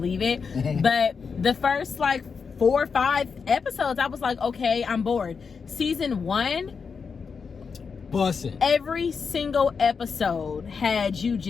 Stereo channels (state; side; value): quieter; right; 5.6 dB